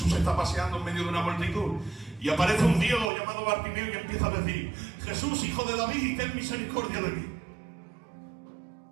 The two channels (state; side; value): drops out; left; at 3.1 s